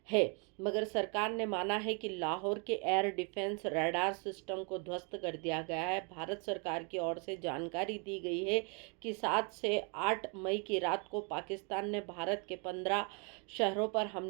है। मगर सरकार ने माना है कि लाहौर के एयर डिफेंस रडार सिस्टम को ध्वस्त कर दिया गया है। भारत सरकार की ओर से जानकारी दी गई है कि 7 से 8 मई की रात को पाकिस्तान ने भारत के 15 शहरों पर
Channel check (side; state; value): left; quieter; 35.8 dB